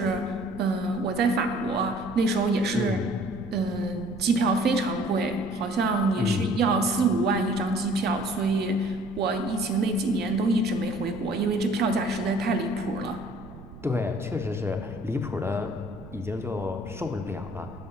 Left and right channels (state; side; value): noise; right; rumble, 17 dB below the sound